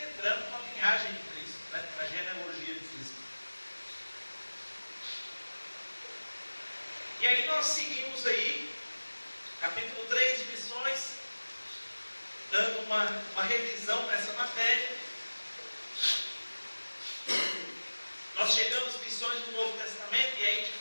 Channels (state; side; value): inverted; both; correlation -1.00